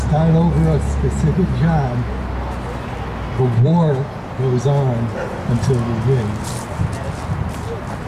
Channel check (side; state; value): both; identical; correlation 1.00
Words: over a specific job, the war goes on until we win.